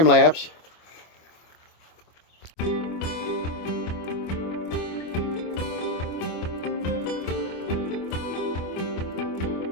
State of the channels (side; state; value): right; late; 25 ms